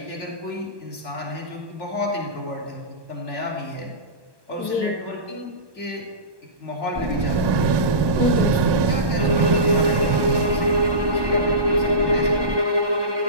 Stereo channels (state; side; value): late; left; 1.2 ms